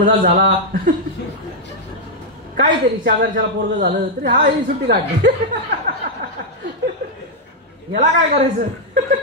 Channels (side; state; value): both; normal; correlation -0.02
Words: झाला. काहीतरी शेजारच्याला पोरग झालं तरी हा ही सुट्टी काढली. याला काय करायचं.